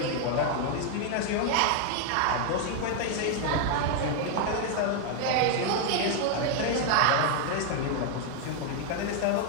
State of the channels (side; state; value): both; different; correlation 0.00